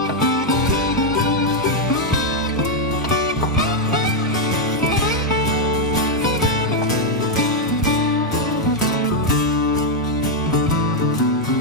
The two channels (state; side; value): normal; both; correlation 0.00